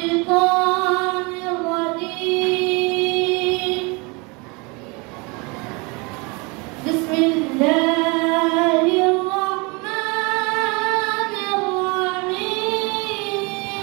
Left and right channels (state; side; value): quieter; left; 28.6 dB